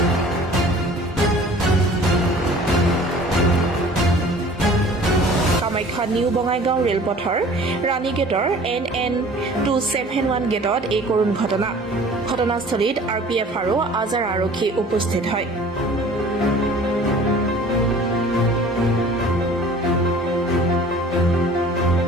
কামাখ্যা নিউ বঙাইগাঁও ৰেলপথৰ ৰাণী গেটৰ NN 271 গেটত এই কৰুণ ঘটনা ঘটনাস্থলীত RPF আৰু আজাৰ আৰক্ষী উপস্থিত হয়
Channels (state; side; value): normal; both; correlation 0.47